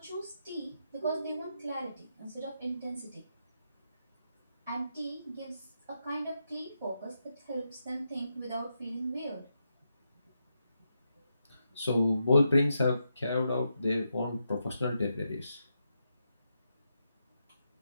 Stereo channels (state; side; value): inverted; both; correlation -0.84